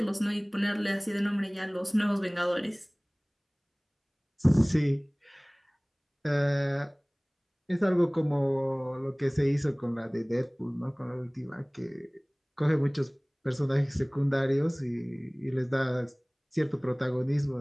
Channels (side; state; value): both; identical; correlation 1.00